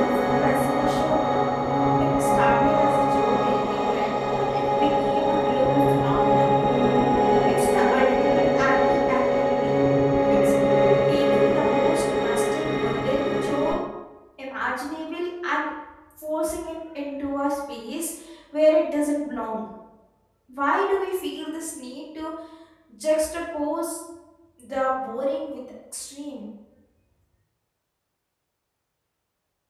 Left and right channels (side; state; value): both; identical; correlation 1.00